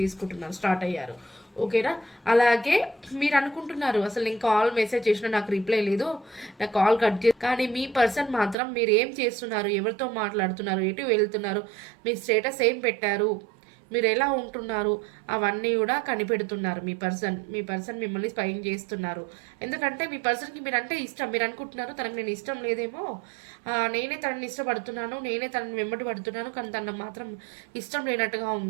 స్టార్ట్ అయ్యారు. ఓకేనా? అలాగే మీరు అనుకుంటున్నారు అసలు నేను కాల్ మెసేజ్ చేసినా నాకు రిప్లై లేదు, నాకు కాల్ కట్ చేసి, కానీ మీ పర్సన్ మాత్రం మీరు ఏం చేస్తున్నారు, ఎవరితో మాట్లాడుతున్నారు, ఎటు వెళ్తున్నారు, మీ స్టేటస్ ఏం పెట్టారు, మీరు ఎలా ఉంటున్నారు అవన్నీ కూడా కనిపెడుతున్నారు. మీ పర్సన్ మిమ్మల్ని స్పైన్ చేస్తున్నారు. ఎందుకంటే మీ పర్సన్కి మీరంటే ఇష్టం. మీరు అనుకుంటున్నారు తనకు నేను ఇష్టం లేదేమో, నేనే తనని ఇష్టపడుతున్నాను, నేనే తనని వెంబడి పడుతున్నాను, కానీ తనకు మాత్రం ఇష్టం లేనట్టుగా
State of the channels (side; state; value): left; drops out; at 8.6 s